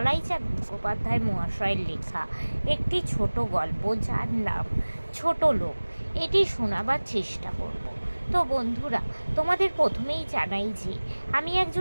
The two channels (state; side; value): inverted; both; correlation -1.00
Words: মুখোপাধ্যায় মহাশয়ের লেখা একটি ছোট গল্প, যার নাম ছোট লোক, এটি শোনাবার চেষ্টা করব। তো বন্ধুরা, তোমাদের প্রথমেই জানাই যে আমি